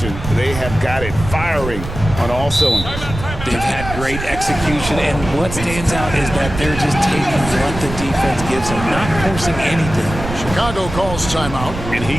They have got it firing on all cylinders. They've had great execution, and what stands out is that they're just taking what the defense gives them, not forcing anything. Chicago calls timeout. And he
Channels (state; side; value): noise; right; rumble, 8 dB below the sound